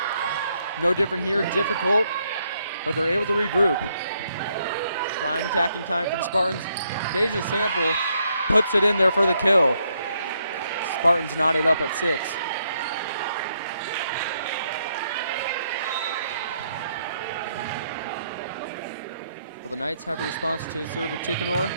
No different here, difficult, but they're able to regroup. Prime attacking time for the Spartans. Deja Sample puts it in there for the kill. Spartans knotted up at 6. Well, the Knights have a response to the serve of Tickenor.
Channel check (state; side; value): inverted; both; correlation -0.74